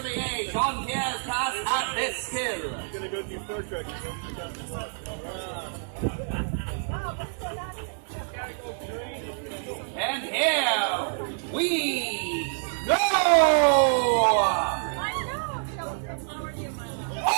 Jean-Pierre's pass at this skill. Gonna go do Star Trek. And here we go! Oh!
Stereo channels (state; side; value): silent; left; 60 dB below the other